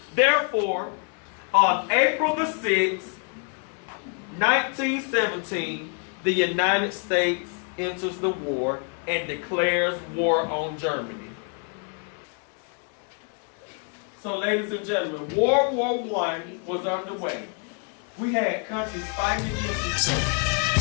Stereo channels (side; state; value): right; quieter; 39.0 dB